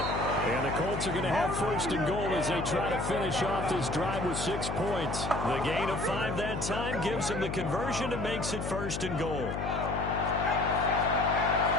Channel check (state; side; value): noise; left; hum, 4 dB below the sound